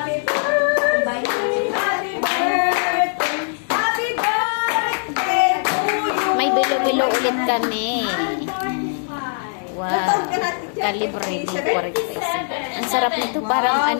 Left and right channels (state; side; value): silent; right; digital silence